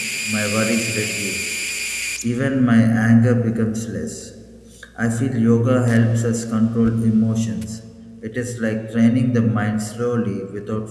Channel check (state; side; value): identical; both; correlation 1.00